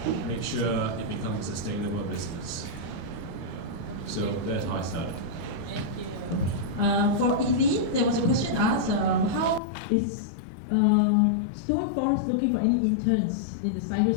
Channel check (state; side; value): drops out; right; at 9.6 s